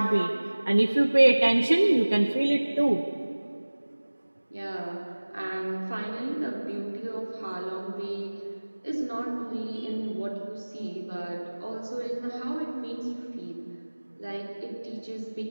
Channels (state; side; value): inverted; both; correlation -1.00